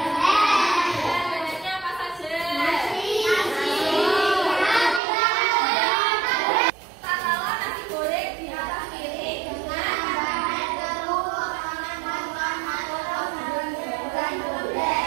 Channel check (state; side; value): drops out; left; at 5.0 s